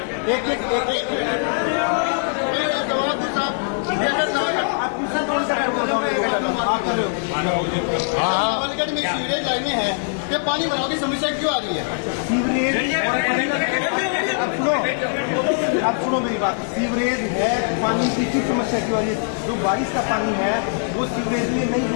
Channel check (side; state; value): right; silent; digital silence